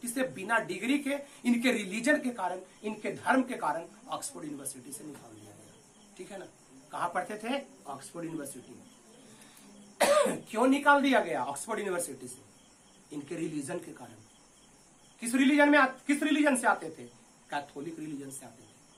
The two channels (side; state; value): both; identical; correlation 1.00